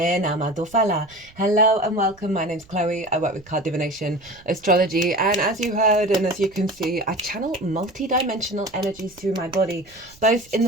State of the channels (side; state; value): right; noise; rumble, 26 dB below the sound